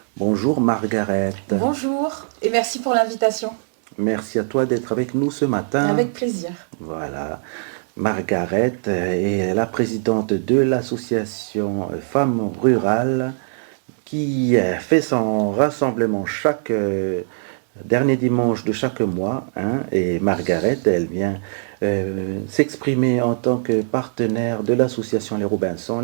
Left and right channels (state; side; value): silent; left; 59 dB below the other